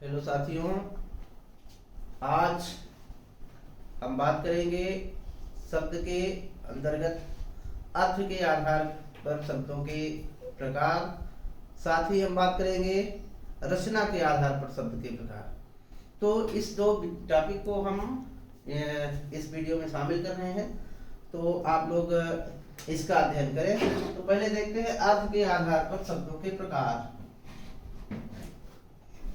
साथियों, आज हम बात करेंगे शब्द के अंतर्गत अर्थ के आधार पर शब्दों के प्रकार। साथ ही हम बात करेंगे रचना के आधार पर शब्द के प्रकार। तो इस दो टॉपिक को हम इस वीडियो में शामिल कर रहे हैं, तो आप लोग इसका अध्ययन करें। तो पहले देखते हैं अर्थ के आधार पर शब्दों के प्रकार।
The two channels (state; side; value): identical; both; correlation 1.00